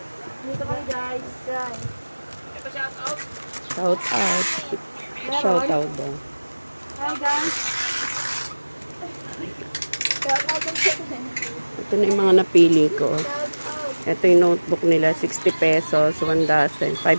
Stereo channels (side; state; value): both; inverted; correlation -1.00